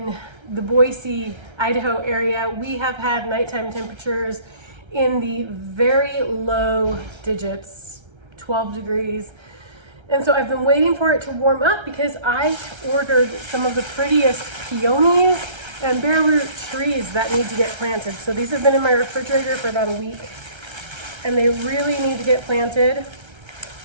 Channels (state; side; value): late; left; 1.3 ms